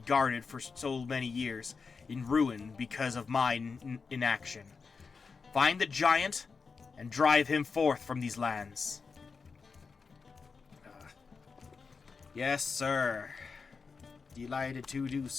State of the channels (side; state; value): right; quieter; 5.0 dB